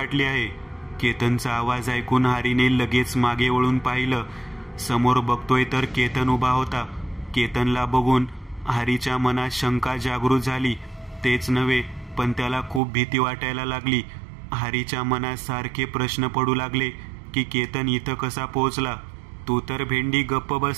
आहे. केतनचा आवाज ऐकून हरीने लगेच मागे वळून पाहिलं. समोर बघतोय तर केतन उभा होता. केतनला बघून हरीच्या मनात शंका जागृत झाली. तेच नव्हे पण त्याला खूप भीती वाटायला लागली. हरीच्या मनात सारखे प्रश्न पडू लागले की केतन इथं कसा पोहोचला? तू तर भेंडी गप्प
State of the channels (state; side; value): drops out; left; at 12.8 s